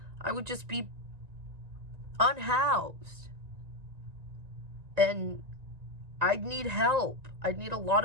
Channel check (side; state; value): left; late; 1.9 ms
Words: I would just be unhoused. And I'd need help. I'd need a lot